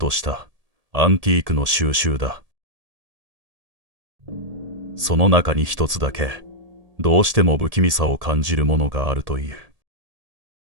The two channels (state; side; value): late; left; 1.7 ms